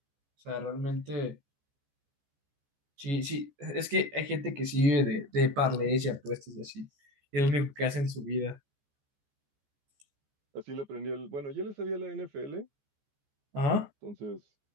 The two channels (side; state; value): left; late; 14 ms